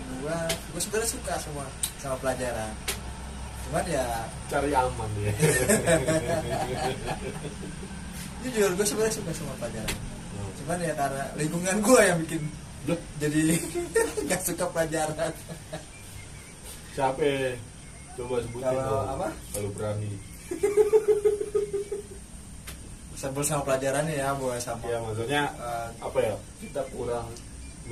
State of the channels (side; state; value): both; identical; correlation 1.00